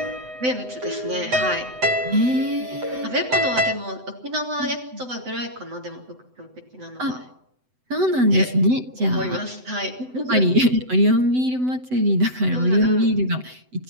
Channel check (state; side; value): late; left; 7.9 ms